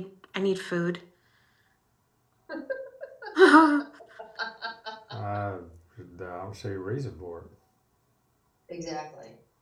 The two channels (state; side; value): identical; both; correlation 1.00